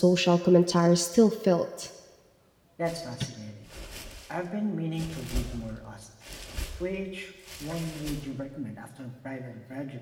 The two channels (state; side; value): identical; both; correlation 1.00